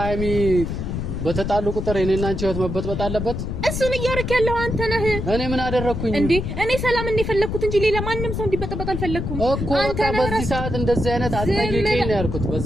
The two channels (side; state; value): left; noise; rumble, 4 dB below the sound